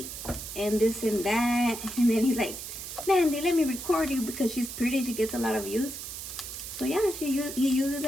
and this and that. And then he's like, Mandy, let me record you because she's pretty. She gets a lot of views. So yeah, he uses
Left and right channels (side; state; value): right; noise; hiss, 9 dB below the sound